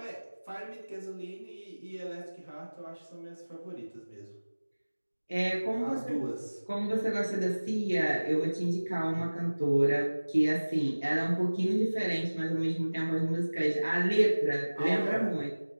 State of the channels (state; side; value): inverted; both; correlation -1.00